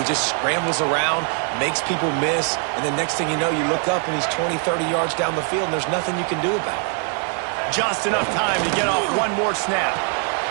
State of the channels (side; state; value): left; quieter; 39.4 dB